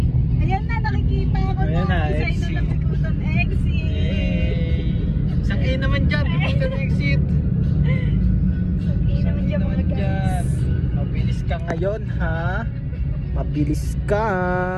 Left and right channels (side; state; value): both; identical; correlation 1.00